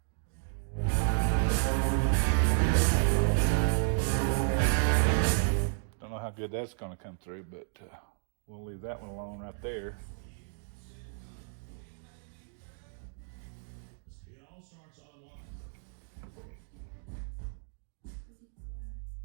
Don't know how good that's going to come through, but we'll leave that one alone right there.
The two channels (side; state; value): left; silent; digital silence